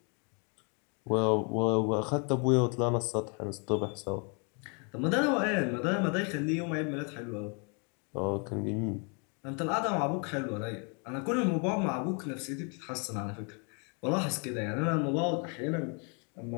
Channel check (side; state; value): right; quieter; 36.1 dB